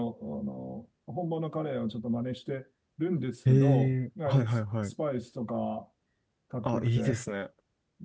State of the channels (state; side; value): identical; both; correlation 1.00